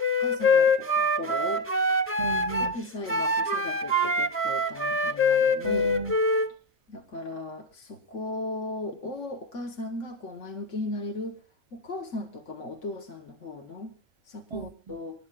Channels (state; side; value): normal; both; correlation 0.08